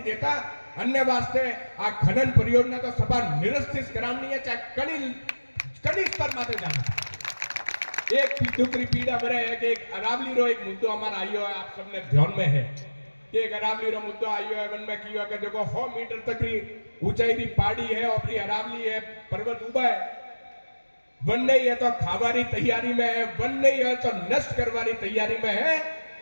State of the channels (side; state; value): both; inverted; correlation -1.00